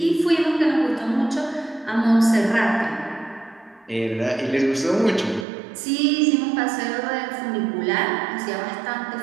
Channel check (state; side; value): drops out; left; at 5.5 s